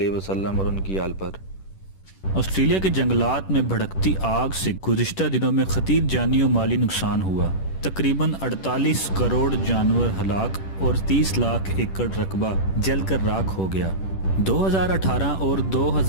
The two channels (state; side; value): late; right; 10 ms